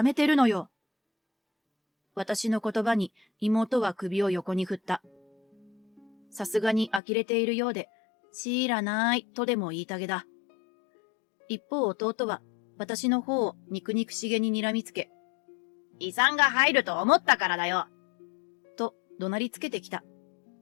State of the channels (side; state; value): right; drops out; at 7.0 s